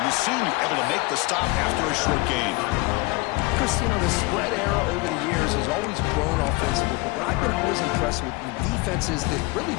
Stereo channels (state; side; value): quieter; right; 24.7 dB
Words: the senior able to make the stop after a short gain. Chris, you know, the spread era over the years has always grown offensively, but what I've been always impressed with the defenses that really